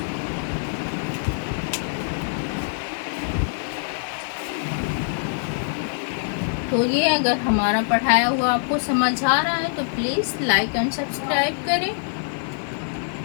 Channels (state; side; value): silent; right; digital silence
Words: तो ये अगर हमारा पढ़ाया हुआ आपको समझ आ रहा है तो प्लीज़ लाइक एंड सब्सक्राइब करें।